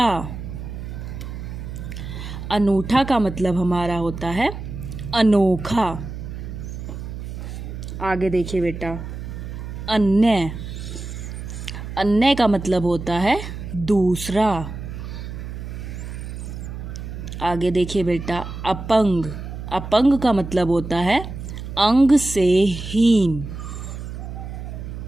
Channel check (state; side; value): noise; right; hum, 8 dB below the sound